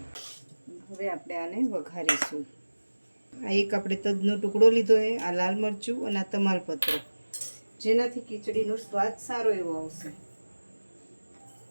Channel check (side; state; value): both; inverted; correlation -1.00